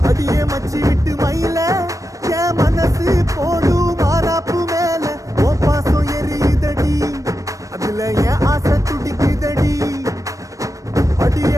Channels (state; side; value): late; left; 0.16 ms